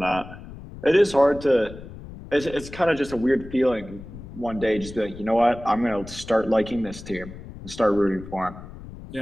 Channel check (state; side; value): noise; left; rumble, 14 dB below the sound